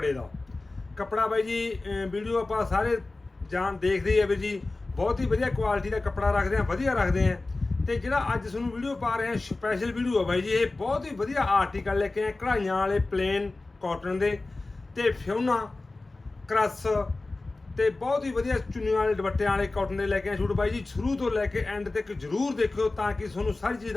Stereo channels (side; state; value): right; quieter; 3.2 dB